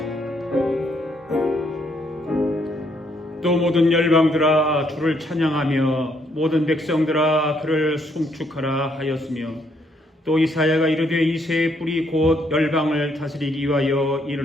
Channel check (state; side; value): normal; both; correlation 0.71